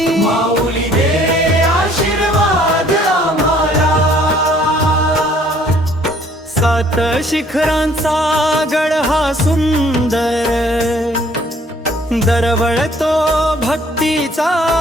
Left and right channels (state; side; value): normal; both; correlation 0.59